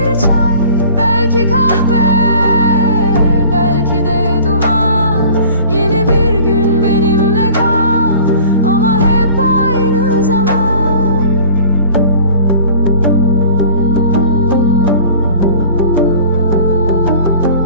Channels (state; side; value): inverted; both; correlation -0.46